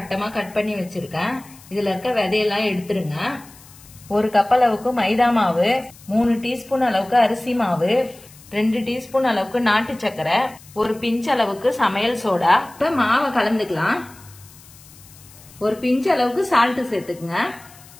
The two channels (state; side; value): noise; left; hiss, 23 dB below the sound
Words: கட் பண்ணி வச்சிருக்கேன். இதுல இருக்க விதையெல்லாம் எடுத்துருங்க. 1 கப் அளவுக்கு மைதா மாவு, 3 டீஸ்பூன் அளவுக்கு அரிசி மாவு, 2 டீஸ்பூன் அளவுக்கு நாட்டு சக்கரை, 1 பிஞ்ச் அளவுக்கு சமையல் சோடா. இப்ப மாவை கலந்துக்கலாம். 1 பிஞ்ச் அளவுக்கு சால்ட் சேர்த்துக்குங்க.